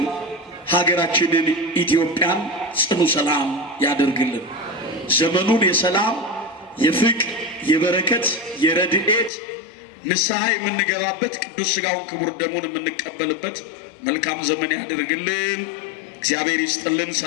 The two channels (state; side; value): drops out; right; at 9.3 s